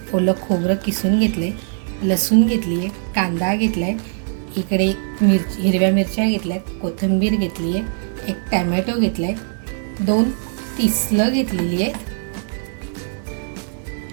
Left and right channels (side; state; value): left; silent; digital silence